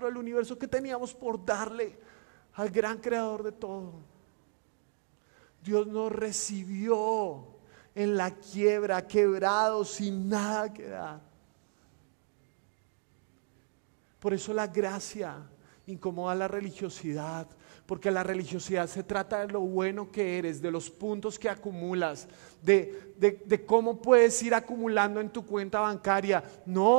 del universo, ¿qué teníamos por darle al gran creador de todo? Dios nos recibió en la quiebra, quebrados, sin nada que dar. Por eso la gracia incomoda la religiosidad, porque la religiosidad se trata de lo bueno que eres, de los puntos que acumulas, de cómo puedes ir acumulando en tu cuenta bancaria.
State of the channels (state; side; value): silent; left; digital silence